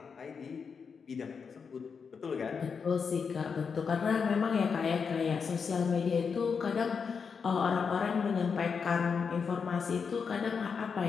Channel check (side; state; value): right; quieter; 5.9 dB